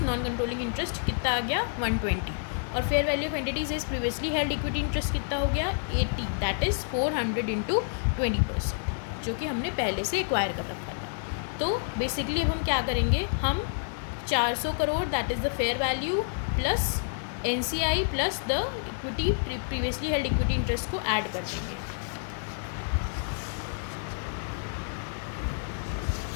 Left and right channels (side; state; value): right; silent; digital silence